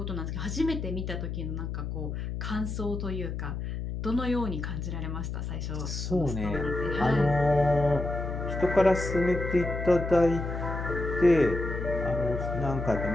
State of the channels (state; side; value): noise; left; hum, 4 dB below the sound